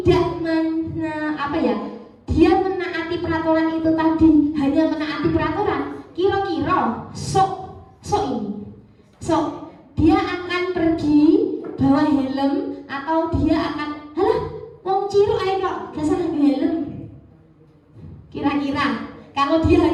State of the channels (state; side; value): identical; both; correlation 1.00